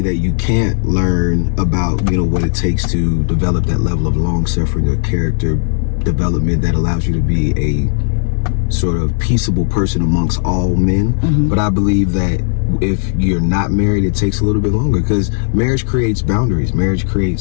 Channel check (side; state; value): right; silent; digital silence